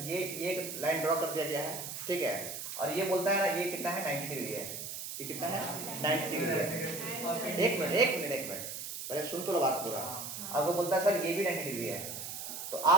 ये एक लाइन ड्रॉ कर दिया गया है, ठीक है, और ये बोलता है ना ये कितना है? 90 डिग्री है। ये कितना है? 90 डिग्री है। एक मिनट पहले सुन तो लो बात पूरा। अब वो बोलता है सर ये भी 90 डिग्री है, तो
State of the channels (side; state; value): right; noise; hiss, 7 dB below the sound